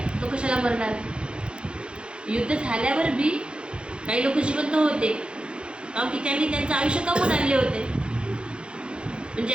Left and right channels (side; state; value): left; late; 0.055 ms